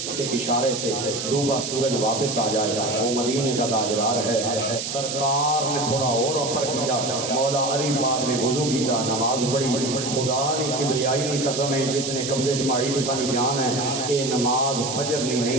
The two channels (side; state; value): right; noise; hiss, 5 dB below the sound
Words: کے اشارے سے ڈوبا سورج واپس آ جائے وہ مدینے کا تاجدار ہے۔ سرکار نے تھوڑا اور اپر کیتا، مولا علی پاک نے وضو کیتا، نماز پڑھی، خدا نے کبریائی نہیں قسم ہے جس نے قبضے چماڑی تو سانی جان ہے، اے نماز فجر